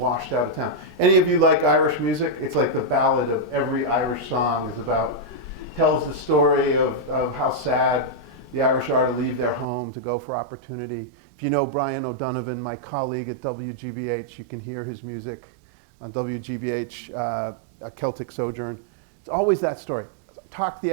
out of town? Any of you like Irish music? It's like the ballad of every Irish song is about, tells the story of how sad the Irish are to leave their home to go for opportunity. If you know Brian O'Donovan, my colleague at WGBH, you can hear his music on WGBH, Celtic Sojourn. It's always that story. Talked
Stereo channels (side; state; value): left; drops out; at 9.7 s